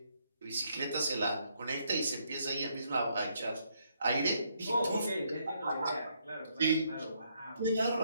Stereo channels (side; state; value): both; inverted; correlation -0.73